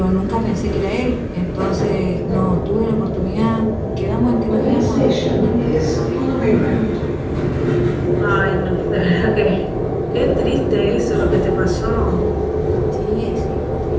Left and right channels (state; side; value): identical; both; correlation 1.00